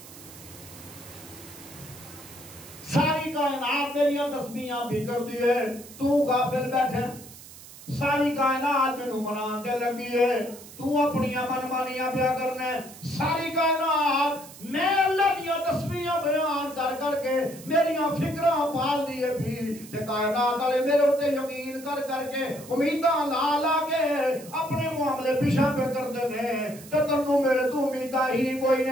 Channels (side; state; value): right; noise; hiss, 17 dB below the sound